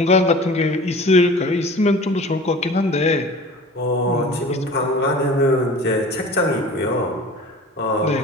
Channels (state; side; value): normal; both; correlation 0.41